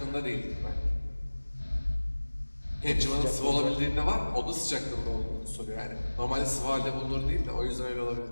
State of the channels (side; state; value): both; inverted; correlation -1.00